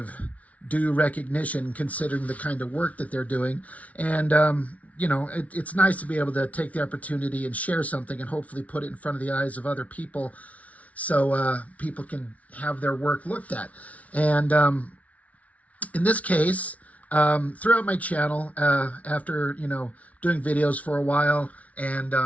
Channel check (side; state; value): right; late; 0.068 ms